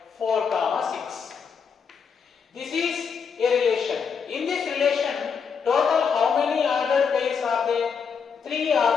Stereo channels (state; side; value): quieter; right; 6.2 dB